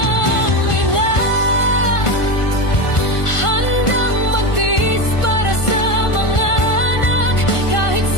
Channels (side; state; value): right; late; 1.5 ms